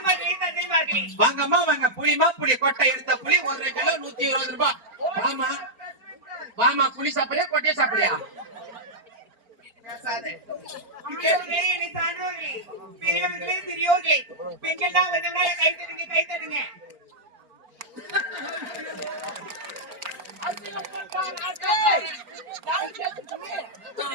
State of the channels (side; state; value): left; late; 4.4 ms